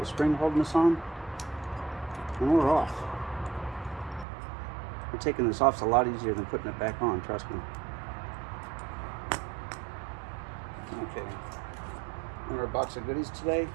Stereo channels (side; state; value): left; drops out; at 4.2 s